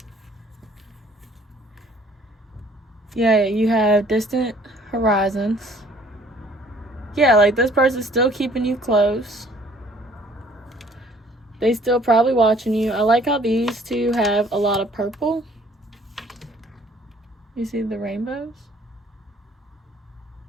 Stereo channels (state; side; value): normal; both; correlation 0.57